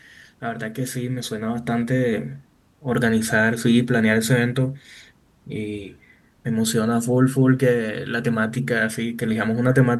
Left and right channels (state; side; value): identical; both; correlation 1.00